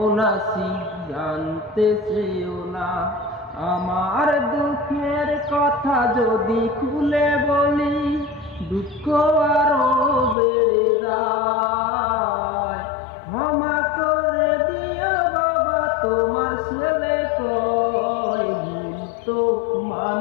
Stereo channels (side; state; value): right; drops out; at 10.4 s